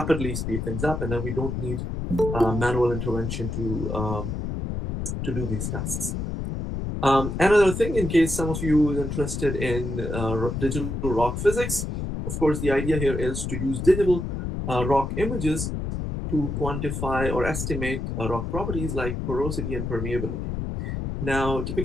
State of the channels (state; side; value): noise; left; rumble, 4 dB below the sound